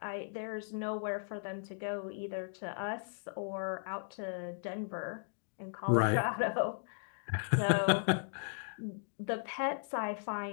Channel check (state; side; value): silent; right; digital silence